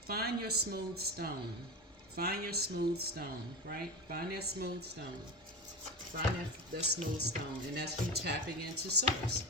Find your smooth stone. Find your smooth stone, right? Find that smooth stone. Find that smooth stone, and that's you tapping into source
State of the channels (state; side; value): normal; both; correlation 0.24